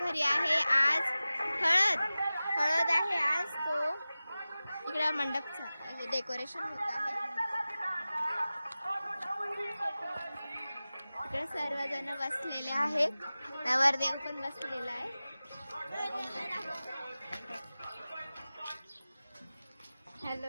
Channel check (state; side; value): inverted; both; correlation -0.96